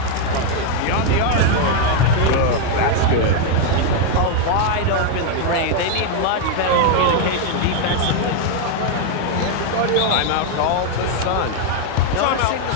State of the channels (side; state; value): both; different; correlation 0.00